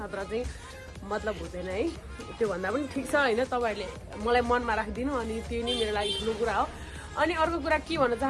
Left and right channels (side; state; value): both; identical; correlation 1.00